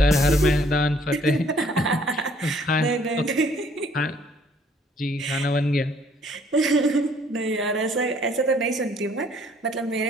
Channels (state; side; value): normal; both; correlation 0.62